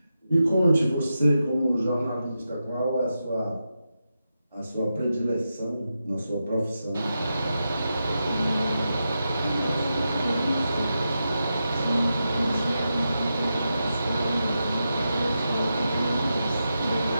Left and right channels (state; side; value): inverted; both; correlation -0.88